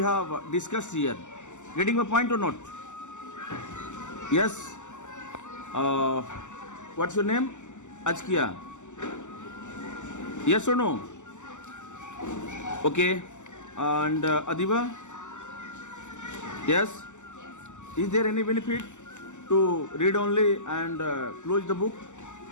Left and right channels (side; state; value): right; late; 0.84 ms